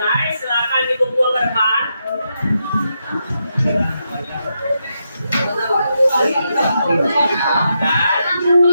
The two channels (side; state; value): both; inverted; correlation -0.83